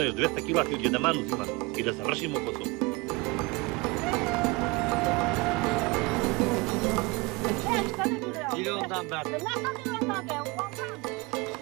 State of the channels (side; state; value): left; quieter; 25.5 dB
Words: 200 kila ti od jedan uzima i da završimo posao. Milyondan ben.